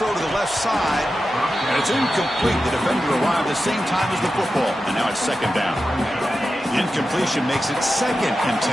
to the left side, and it's incomplete. The defender arrived at the same time as the football, and now it's second down. The incompletion makes it 2nd and 10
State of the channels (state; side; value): normal; both; correlation 0.91